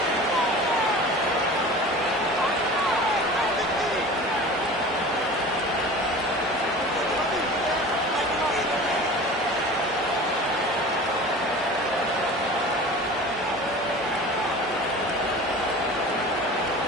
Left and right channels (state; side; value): normal; both; correlation 0.38